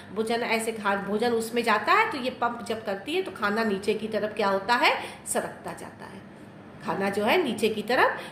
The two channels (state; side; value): identical; both; correlation 1.00